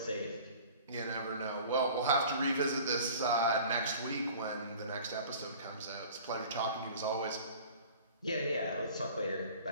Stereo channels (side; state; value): both; inverted; correlation -0.45